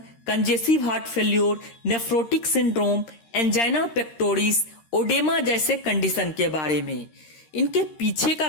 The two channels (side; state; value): right; late; 13 ms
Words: congestive heart failure, nephrotic syndrome, angina pectoris, oedema जैसे कंडीशन के बारे में। इनके पीछे का